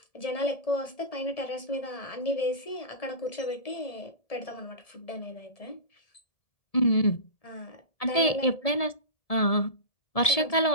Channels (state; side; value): late; right; 1.7 ms